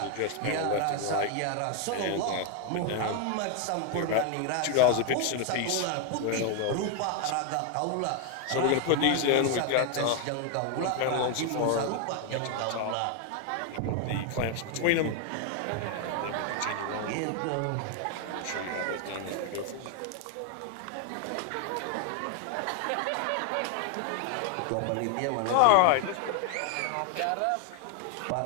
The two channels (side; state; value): both; different; correlation 0.01